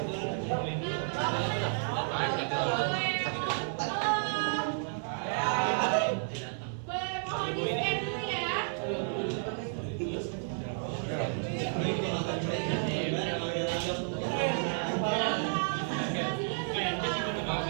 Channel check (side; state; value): left; silent; 55 dB below the other